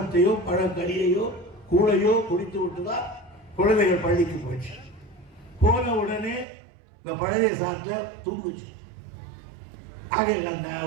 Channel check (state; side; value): drops out; left; at 6.5 s